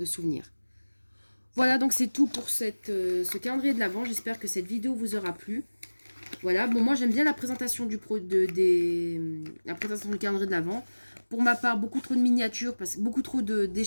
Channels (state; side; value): inverted; both; correlation -1.00